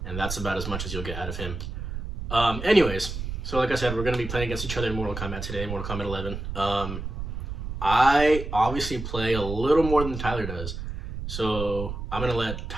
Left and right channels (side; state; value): right; noise; rumble, 6 dB below the sound